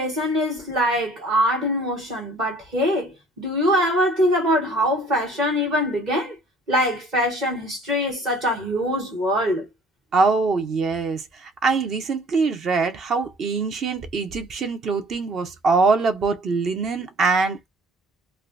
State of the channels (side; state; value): both; normal; correlation 0.52